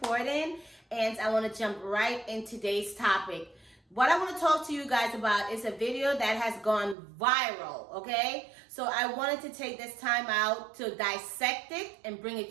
and I want to jump right in today's topic. What I want to talk to you guys about is a video that has gone viral, okay? So I wanted to take this time out to dissect it and bring it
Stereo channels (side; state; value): left; drops out; at 7.0 s